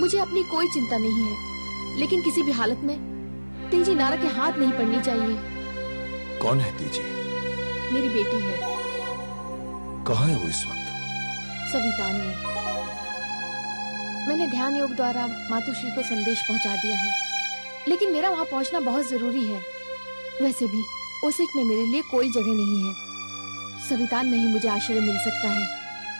अपनी कोई चिंता नहीं है, लेकिन किसी भी हालत में तेजी नारद के हाथ नहीं पड़नी चाहिए। कौन है तेजी? मेरी बेटी है। कहाँ है वो इस वक्त? सवितान में। मैंने ध्यान योग द्वारा मातुश्री को संदेश पहुंचा दिया है, लेकिन मेरा वहां पहुंचना बहुत जरूरी है। वैसे भी ओसेक में मेरे लिए कोई जगह नहीं है। सवितान में ही मुझे आश्रय मिल सकता है।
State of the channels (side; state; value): both; inverted; correlation -1.00